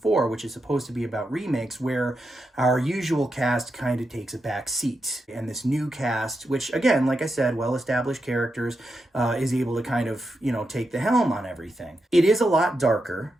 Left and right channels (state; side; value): normal; both; correlation 0.86